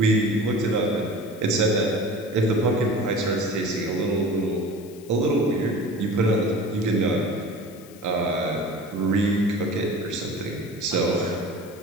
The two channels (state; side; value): noise; left; hiss, 23 dB below the sound